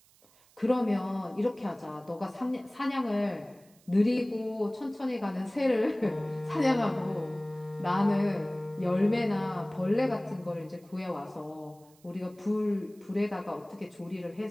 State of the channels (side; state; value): right; noise; hiss, 29 dB below the sound